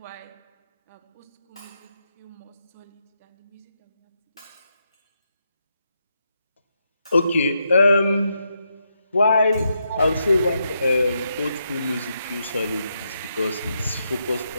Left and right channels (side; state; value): both; inverted; correlation -0.82